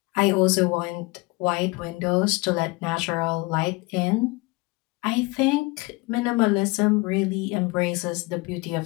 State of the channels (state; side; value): quieter; right; 24.5 dB